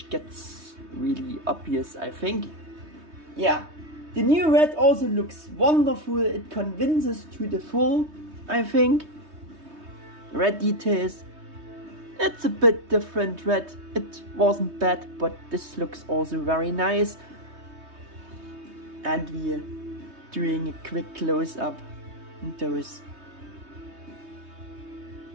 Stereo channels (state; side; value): late; left; 3.2 ms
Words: gets really obvious, I think. Yeah, the new red also looks wonderful. It convinces to the full, I think. Red details. It's a bit different red. It wasn't bad, but this looks also very nice. And we're doing a quick close-up on those